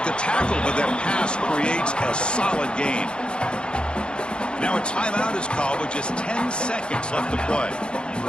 the tackle, but that pass creates a solid gain. Now a timeout is called with just 10 seconds left to play.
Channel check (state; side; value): late; right; 0.053 ms